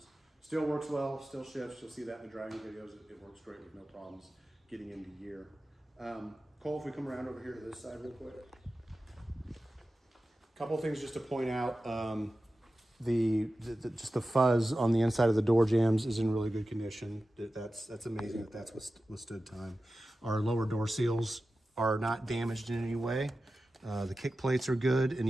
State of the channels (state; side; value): normal; both; correlation 0.94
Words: Still works well, still shifts. You'll see that in the driving videos. It works great with no problems getting into gear. Cole, if we come around over here to this side real quick. Couple of things just to point out. Just the fuzz on the inside of the door jambs is in really good condition. That's amazing that that's withstood time. Our lower door seals are not damaged in any way. The kick plates are good, and